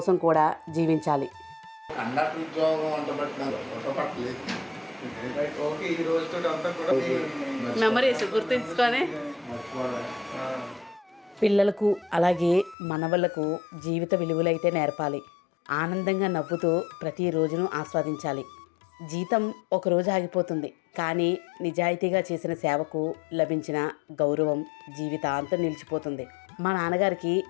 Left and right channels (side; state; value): right; drops out; at 12.8 s